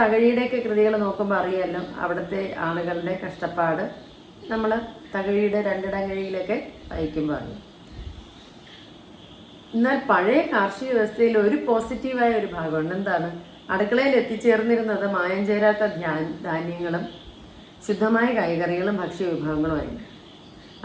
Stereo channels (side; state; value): both; identical; correlation 1.00